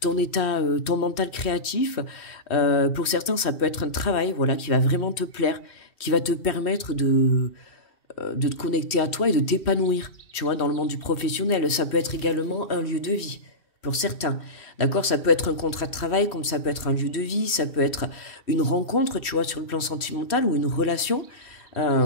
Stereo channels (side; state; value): right; late; 2.7 ms